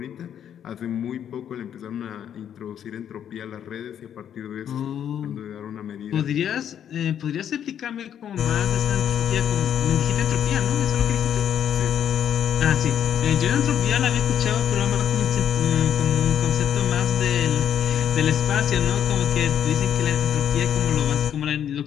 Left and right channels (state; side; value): quieter; right; 9.4 dB